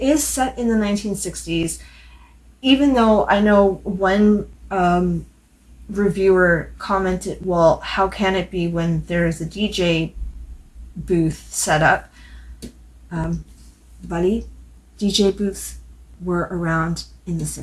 is set in the 1960s, even though I know one reviewer commented, well, how can it be when there is a DJ booth set up? Buddy, DJ booths were around in the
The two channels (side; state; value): both; identical; correlation 1.00